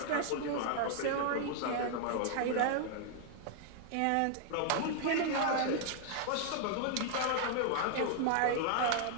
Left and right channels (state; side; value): different; both; correlation 0.00